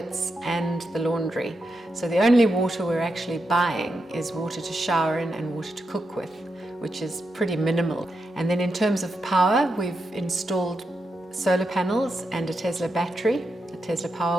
and the laundry. So the only water we're actually buying is water to shower in and water to cook with, which is pretty minimal. And then in terms of power, we've installed solar panels and a Tesla battery, a Tesla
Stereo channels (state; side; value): normal; both; correlation 0.85